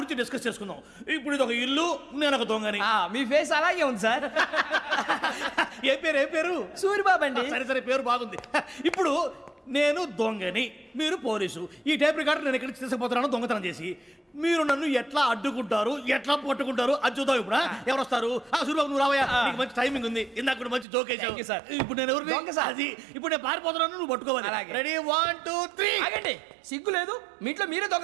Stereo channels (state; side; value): drops out; left; at 20.9 s